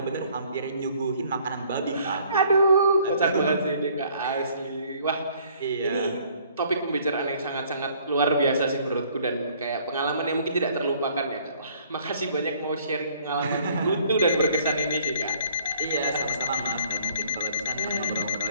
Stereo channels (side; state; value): both; inverted; correlation -0.59